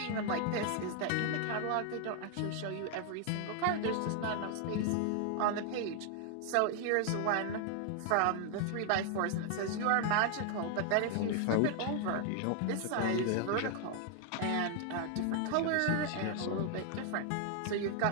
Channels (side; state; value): both; different; correlation 0.00